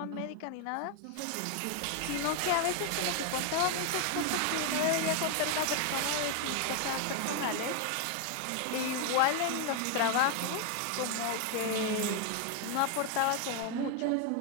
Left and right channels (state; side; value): different; both; correlation 0.01